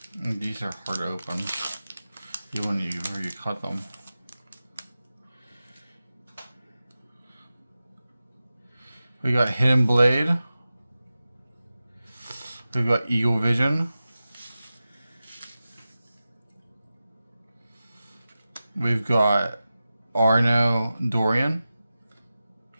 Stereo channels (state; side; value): inverted; both; correlation -0.94